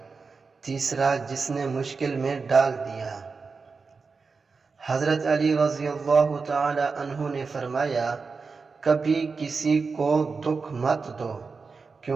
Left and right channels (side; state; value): left; quieter; 4.7 dB